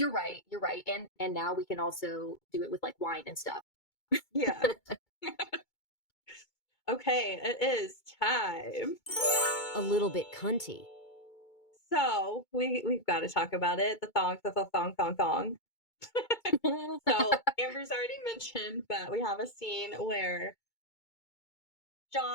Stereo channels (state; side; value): late; right; 2.2 ms